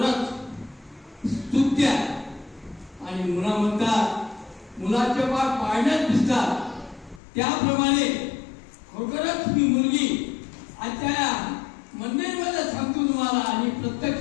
स्तुत्य आहे. आणि मुला म्हणतात मुलाचे पाय पाळण्यात दिसतात. त्याप्रमाणे खरोखरच ही मुलगी आजच्या मंदिरमध्ये सांगतो तुम्हाला आणि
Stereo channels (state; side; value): drops out; right; at 7.2 s